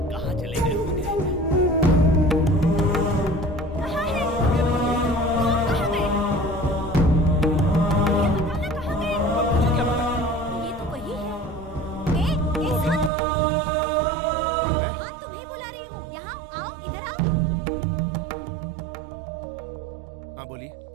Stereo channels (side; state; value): left; drops out; at 13.1 s